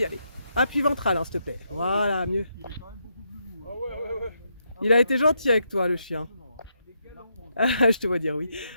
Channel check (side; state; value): both; inverted; correlation -0.80